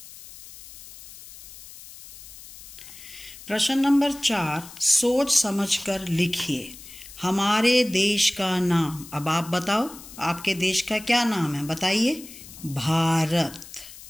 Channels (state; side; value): noise; left; hiss, 17 dB below the sound